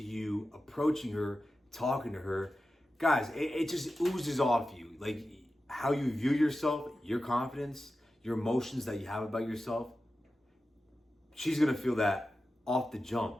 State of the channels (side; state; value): both; normal; correlation 0.93